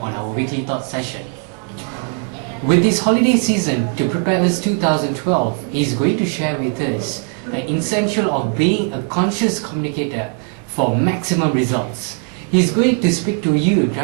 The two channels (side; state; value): left; quieter; 39.9 dB